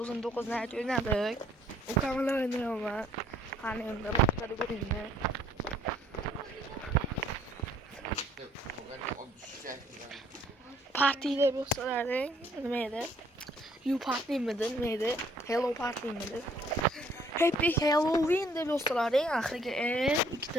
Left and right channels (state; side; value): normal; both; correlation 0.63